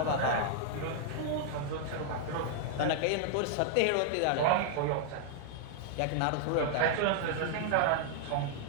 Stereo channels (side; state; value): both; different; correlation 0.00